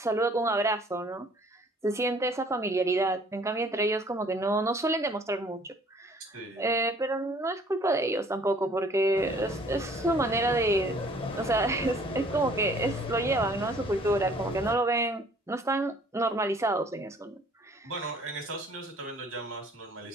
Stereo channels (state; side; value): normal; both; correlation 0.56